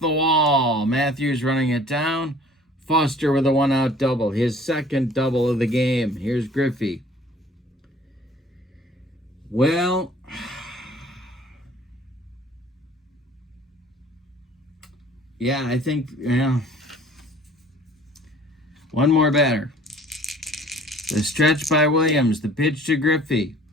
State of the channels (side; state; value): both; normal; correlation 0.51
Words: wall. Matthews running it down. Foster with a 1-out double. His second double of the game. Here's Griffey. Well, yeah, I think, one more batter. The stretch by Williams. The pitch to Griffey.